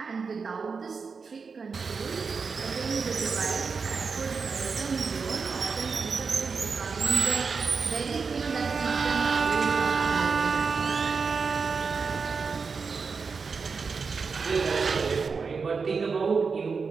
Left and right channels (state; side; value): quieter; left; 5.1 dB